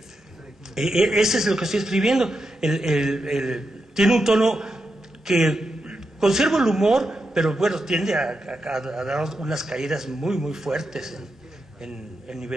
ese es lo que estoy escribiendo. Tiene un tono que conserva el humor, pero bueno, tiende a dar unas caídas muy, muy fuertes en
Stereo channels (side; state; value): both; normal; correlation 0.86